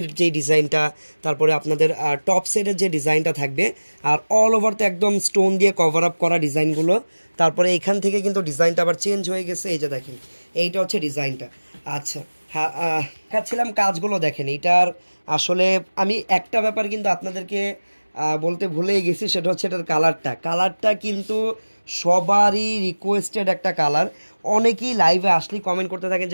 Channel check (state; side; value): inverted; both; correlation -1.00